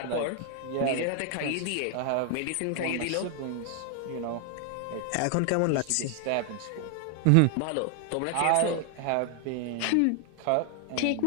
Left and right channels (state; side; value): different; both; correlation 0.00